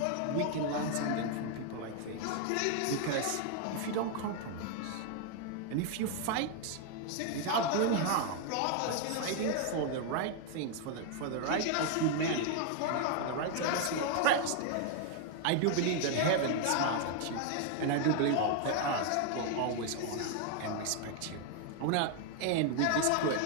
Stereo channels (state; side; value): different; both; correlation 0.00